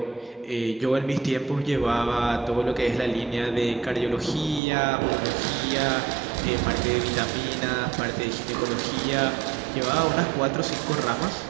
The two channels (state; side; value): drops out; left; at 4.6 s